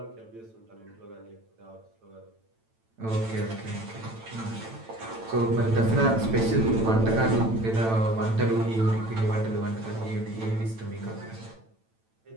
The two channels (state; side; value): late; left; 9.0 ms